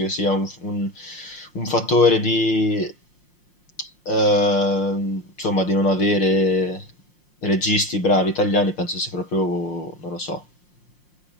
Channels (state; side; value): late; right; 5.6 ms